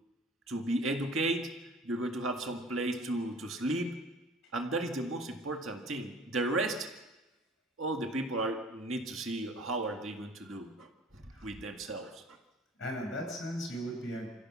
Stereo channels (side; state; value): both; normal; correlation 0.48